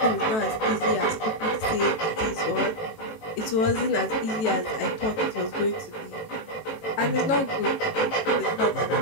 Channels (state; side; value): late; right; 18 ms